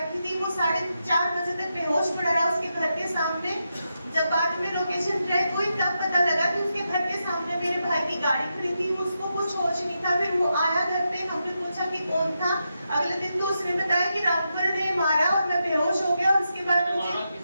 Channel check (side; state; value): both; inverted; correlation -0.86